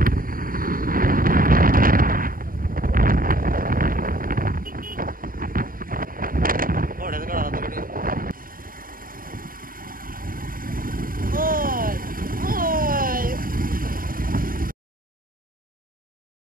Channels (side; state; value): left; late; 0.41 ms